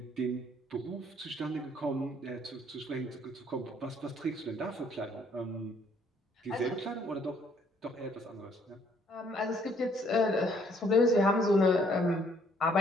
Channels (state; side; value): normal; both; correlation 0.64